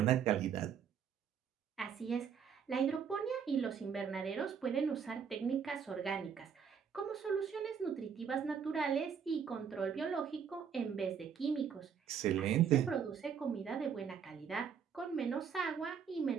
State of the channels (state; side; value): quieter; left; 7.2 dB